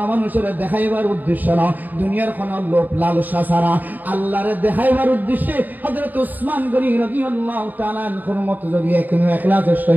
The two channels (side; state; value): left; late; 0.085 ms